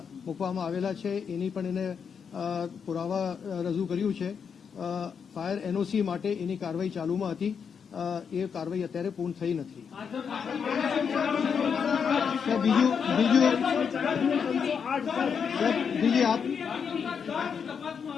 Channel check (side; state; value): right; quieter; 6.7 dB